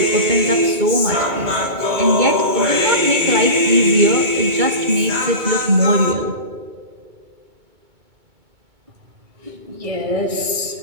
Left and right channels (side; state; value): left; late; 2.2 ms